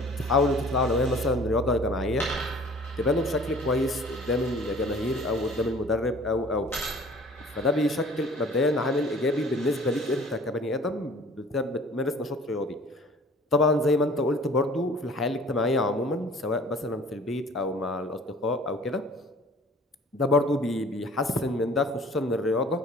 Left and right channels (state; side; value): normal; both; correlation 0.50